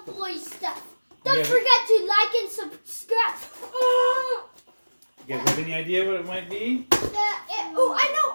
boy stuff. Don't forget to like and subscribe. You guys have any idea what it might be? Oh, I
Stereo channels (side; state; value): both; inverted; correlation -1.00